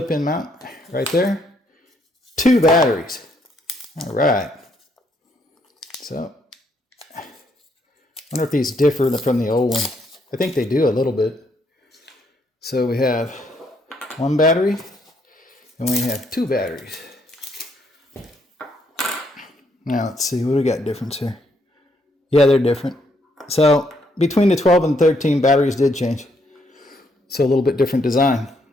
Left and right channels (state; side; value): normal; both; correlation 0.72